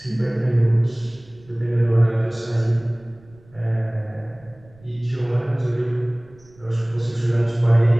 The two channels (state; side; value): noise; right; rumble, 27 dB below the sound